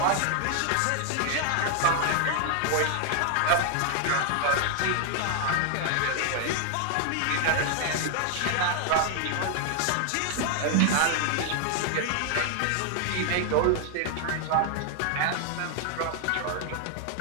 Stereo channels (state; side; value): different; both; correlation 0.00